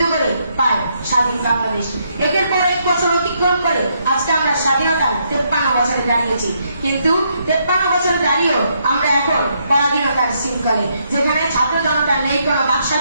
করে পায় স্বাধীন বাংলাদেশ। একের পর 1 বছর অতিক্রম করে আজকে আমরা স্বাধীনতার 53 বছরে দাঁড়িয়েছি। কিন্তু 53 বছরে দাঁড়িয়েও আমরা এখন পরাধীনতার শৃঙ্খলে, যেখানে ছাত্র জনতার নেই কোনো বাক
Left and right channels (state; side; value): inverted; both; correlation -0.75